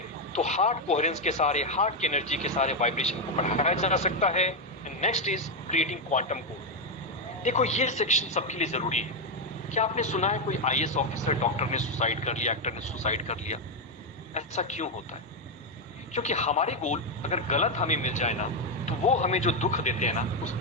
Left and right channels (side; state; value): both; normal; correlation 0.04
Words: तो हार्ट कोहेरेंस के सारे, हार्ट की एनर्जी के सारे वाइब्रेशन को बढ़ाया जा सकता है। Next is creating quantum code. देखो ये सेक्शन सबके लिए जरूरी है। क्या आपने सुना है कोई आईएएस ऑफिसर, डॉक्टर ने सुसाइड कर लिया, एक्टर ने सुसाइड कर लिया? ऐसा क्यों होता है? क्योंकि हमारे गोल अगर गलत हमें मिल जाए ना, तो वो हमें जो दुख देते हैं ना, उस